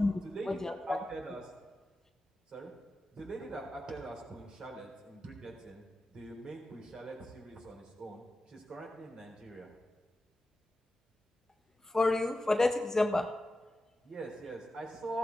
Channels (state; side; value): normal; both; correlation 0.92